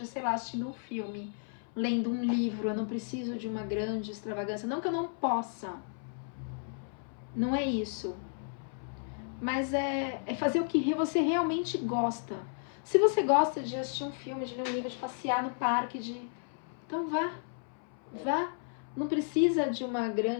sei lá, assistindo um filme, lendo um livro, eu não preciso de uma grande extravagância. Não que eu não possa, Não é isso. Mas é fazer o que você realmente gosta. Se você gosta de assistir um filme, de ler um livro, de passear no parque, então vá. Não precisa de uma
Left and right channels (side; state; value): right; silent; 56 dB below the other